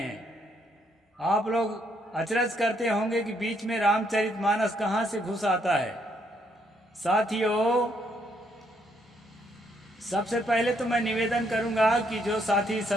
आप लोग अचरज करते होंगे कि बीच में रामचरितमानस कहाँ से घुस आता है। साथियों, सबसे पहले तो मैं निवेदन करूंगा कि जो साथी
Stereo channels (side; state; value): both; normal; correlation 0.72